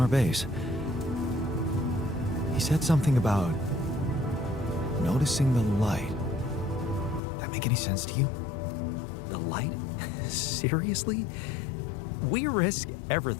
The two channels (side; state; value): right; drops out; at 7.2 s